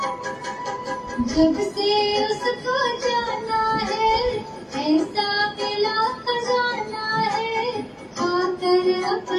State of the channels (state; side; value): identical; both; correlation 1.00